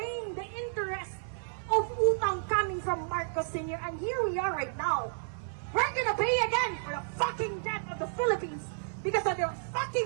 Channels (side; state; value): left; silent; 57 dB below the other